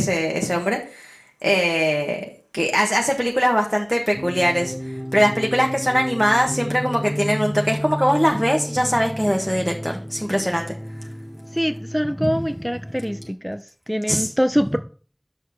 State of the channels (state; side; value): identical; both; correlation 1.00